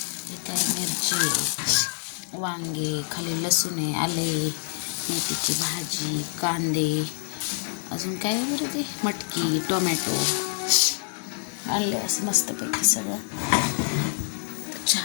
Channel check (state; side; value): silent; right; 61 dB below the other